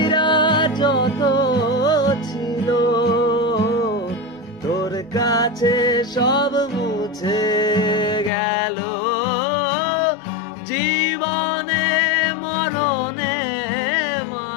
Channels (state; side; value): drops out; right; at 8.3 s